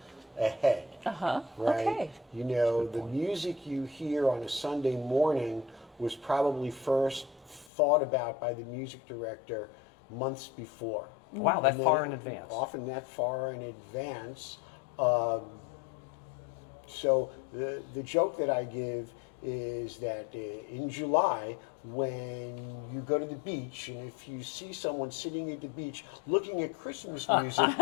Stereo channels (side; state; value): right; drops out; at 7.7 s